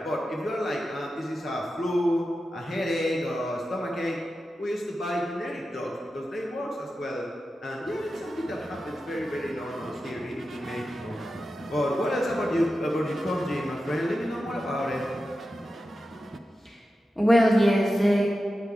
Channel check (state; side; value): normal; both; correlation 0.91